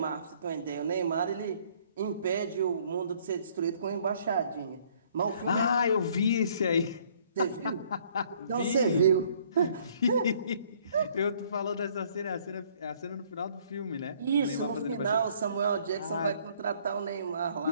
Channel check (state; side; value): inverted; both; correlation -0.61